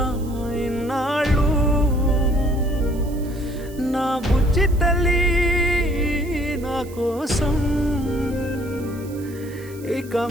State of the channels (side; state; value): right; noise; hiss, 22 dB below the sound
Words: ఇన్నాళ్ళు నా బుజ్జి తల్లి నా కోసం ఇక